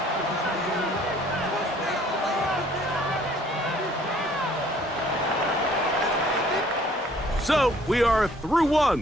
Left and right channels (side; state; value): both; normal; correlation 0.58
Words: So, we are through